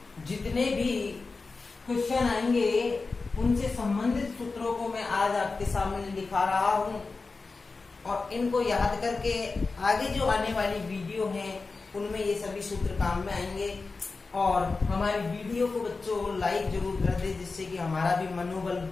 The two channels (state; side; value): quieter; right; 4.0 dB